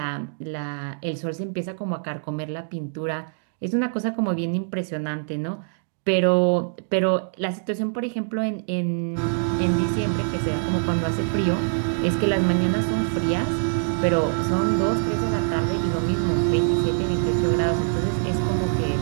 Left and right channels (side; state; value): left; silent; digital silence